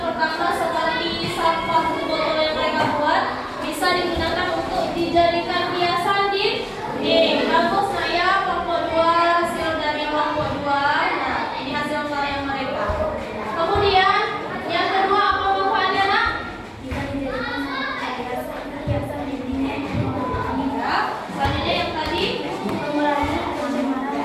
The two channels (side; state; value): both; identical; correlation 1.00